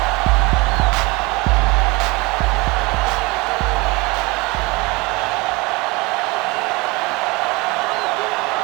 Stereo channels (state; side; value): quieter; left; 24.5 dB